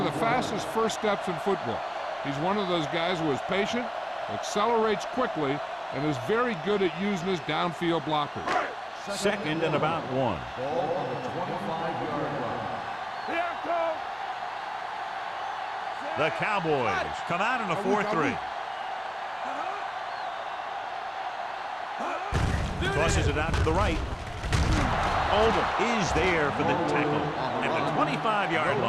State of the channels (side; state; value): both; identical; correlation 1.00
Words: the fastest first steps in football. He's one of those guys who is patient, accelerates quickly, and is very good at using his downfield blockers. Second and about 1. Ball on the 25-yard line. The Cowboys come out in a 4-3. Tosses it out to the right. Oldham is there for the tackle at the 25-yard